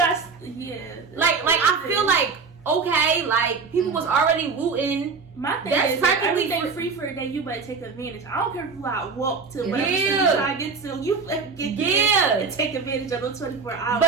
like I feel like okay, like people was already looting. My thing That's is, practically everything free for a day, you better take advantage. I don't care if you out walk to Yeah. whatever Yeah. you try to get to. You better get there and take advantage of those 24 hours.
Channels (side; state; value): left; quieter; 4.9 dB